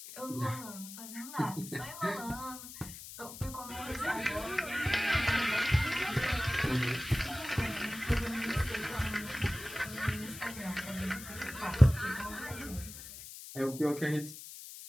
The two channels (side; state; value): left; noise; hiss, 13 dB below the sound